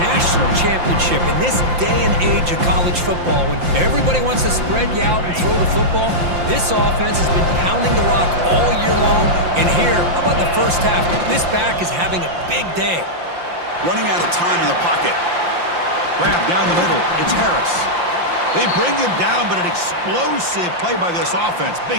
national championship in this day and age of college football when everybody wants to spread you out and throw the football. This offense has been pounding the rock all year long, and here, how about the first half? This back is having a big day. Running out of time in the pocket. Grab down the middle. It's Harris. They bring him down, but an explosive play by this offense.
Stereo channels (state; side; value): late; left; 5.8 ms